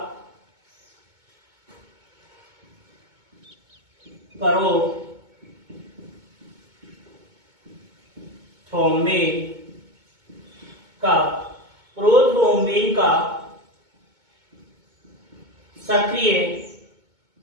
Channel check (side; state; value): left; late; 2.2 ms